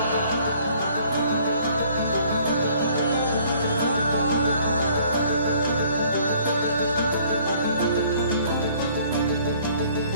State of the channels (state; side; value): inverted; both; correlation -0.58